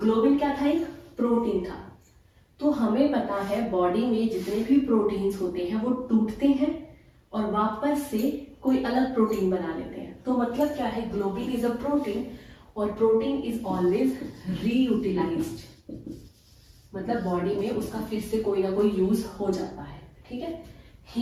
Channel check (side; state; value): both; identical; correlation 1.00